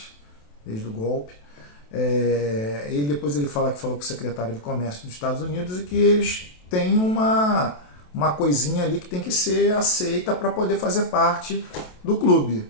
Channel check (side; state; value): right; late; 28 ms